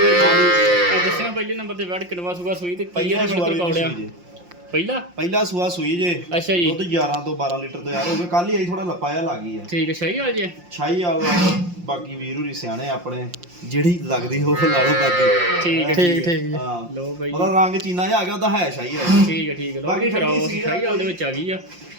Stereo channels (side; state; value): left; late; 5.7 ms